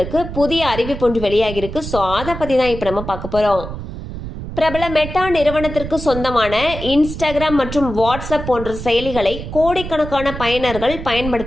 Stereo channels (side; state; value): right; noise; rumble, 9 dB below the sound